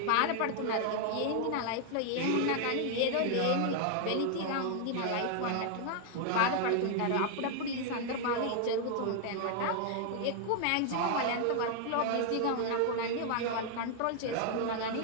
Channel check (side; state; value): both; different; correlation 0.00